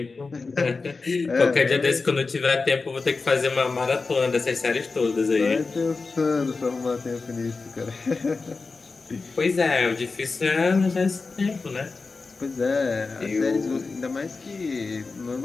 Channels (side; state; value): right; quieter; 4.1 dB